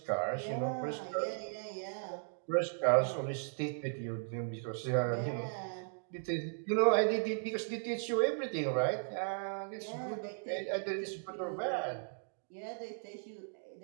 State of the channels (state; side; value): silent; left; digital silence